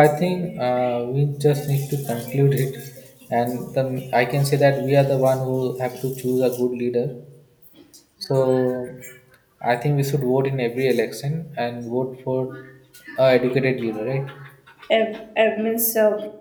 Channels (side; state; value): both; identical; correlation 1.00